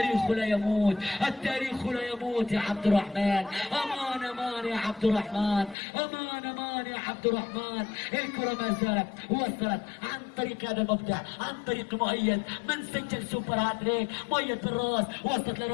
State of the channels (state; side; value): drops out; right; at 5.8 s